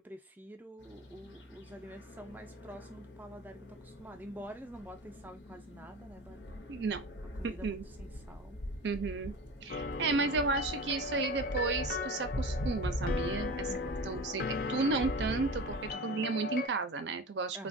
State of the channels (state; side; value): normal; both; correlation 0.32